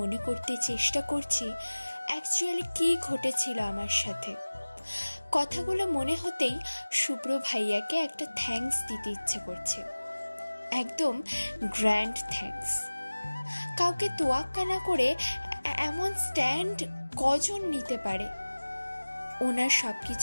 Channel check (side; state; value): both; inverted; correlation -1.00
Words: মনে করতে চেষ্টা করছি অ্যাকচুয়ালি কি ঘটেছিল আমার সাথে। কথাগুলো মনে হতেই শুভ্র ভাইয়াকে একটা থ্যাঙ্কস দিতে ইচ্ছে করছে, একদম গ্র্যান্ড থ্যাঙ্কস। কাউকে তোয়াক্কা না করে এমন স্ট্যান্ড কজন নিতে পারে? ওনার সব